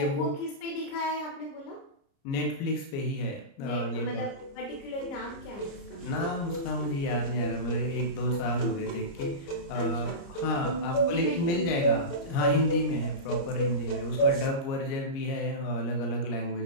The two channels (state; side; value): late; right; 30 ms